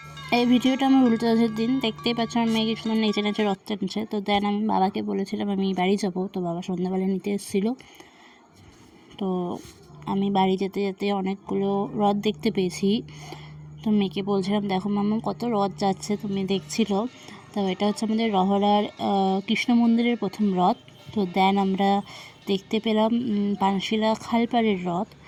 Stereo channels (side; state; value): both; identical; correlation 1.00